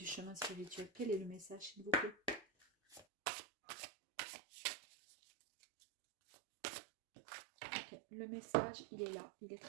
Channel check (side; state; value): left; drops out; at 3.1 s